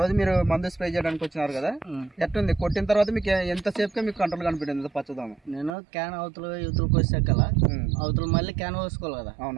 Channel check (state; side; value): drops out; left; at 5.7 s